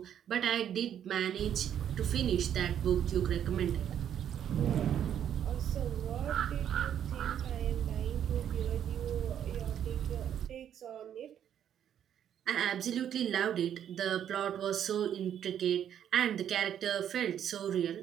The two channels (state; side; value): quieter; left; 9.6 dB